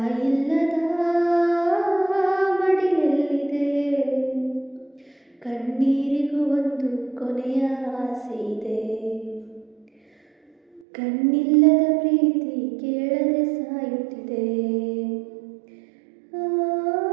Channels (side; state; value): left; drops out; at 10.8 s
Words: ಮಡಿಲಲ್ಲಿದೆ. ಕಣ್ಣೀರಿಗೂ ಒಂದು ಕೊನೆಯ ಆಸೆ ಇದೆ. ಕಣ್ಣಿಲ್ಲದ ಪ್ರೀತಿ ಕೇಳದೆ ಸಾಯುತ್ತಿದೆ.